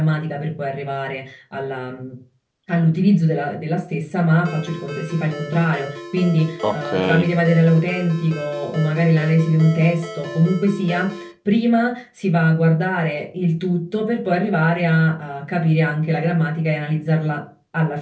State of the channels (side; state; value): both; identical; correlation 1.00